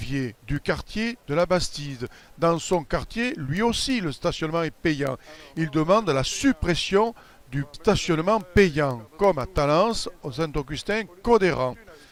du quartier de la Bastide. Dans son quartier, lui aussi, le stationnement est payant. Il demande la suppression du stationnement payant, comme à Talence, au Saint-Augustin, Codéran.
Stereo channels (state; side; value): identical; both; correlation 1.00